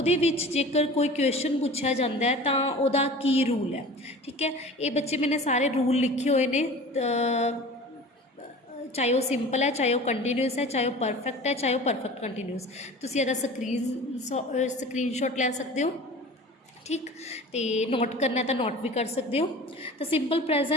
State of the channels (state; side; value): normal; both; correlation 0.39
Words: ਵਿੱਚ जेकर कोई क्वेश्चन पूछा जाता है तो ਉਹਦਾ की रूल है। ठीक है, ये बच्चे मैंने सारे रूल लिखे हुए ने, चाहे वो सिंपल है, चाहे वो कंटीन्यूस है, चाहे वो परफेक्ट है, चाहे वो परफेक्ट कंटीन्यूस। तुसीं ਇਹਦਾ स्क्रीनशॉट ले सकते हो। ठीक, तो नोट करना है तो नोट भी कर सकते हो। तो सिंपल